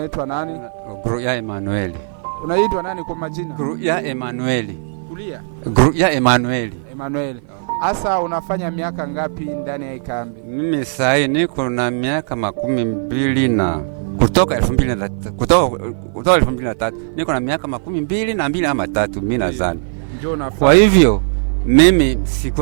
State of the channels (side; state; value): left; silent; 56 dB below the other